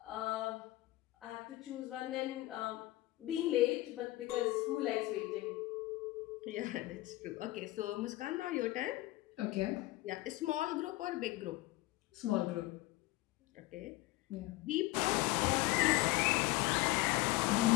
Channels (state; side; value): quieter; right; 18.6 dB